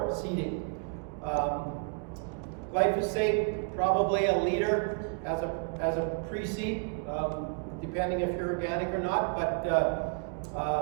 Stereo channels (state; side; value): quieter; left; 38.0 dB